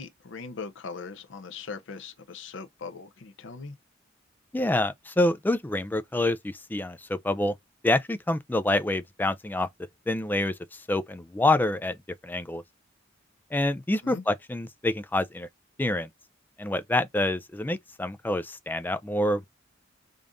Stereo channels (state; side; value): normal; both; correlation 0.75